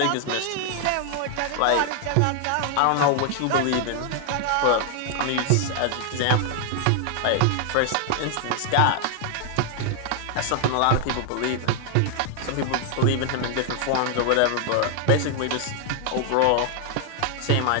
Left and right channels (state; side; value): different; both; correlation 0.00